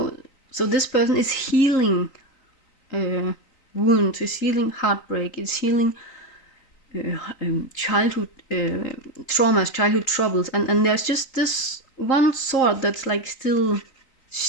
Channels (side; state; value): right; late; 3.7 ms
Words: this person is healing wounds, is healing heartbreak, is healing childhood traumas, childhood troubles, and there's just this one sword that's like still